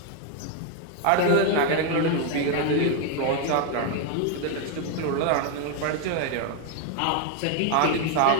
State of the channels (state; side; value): different; both; correlation 0.01